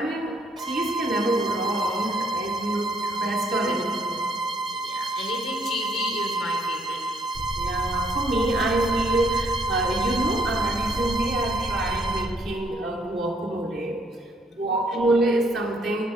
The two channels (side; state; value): both; normal; correlation 0.68